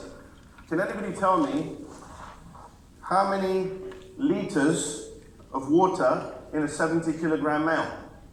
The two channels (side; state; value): both; identical; correlation 1.00